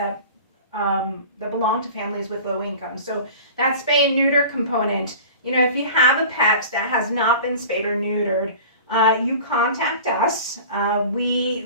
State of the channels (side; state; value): both; inverted; correlation -0.39